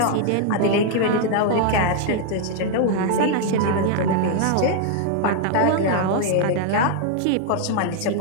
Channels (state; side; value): different; both; correlation 0.00